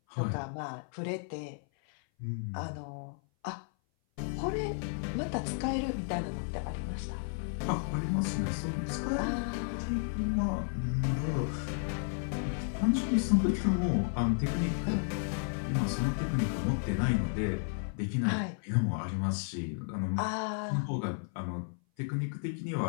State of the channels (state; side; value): silent; right; 56 dB below the other